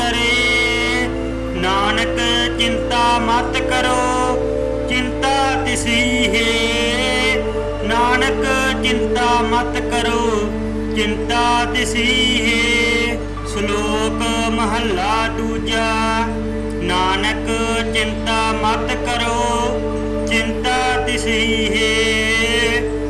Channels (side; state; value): both; identical; correlation 1.00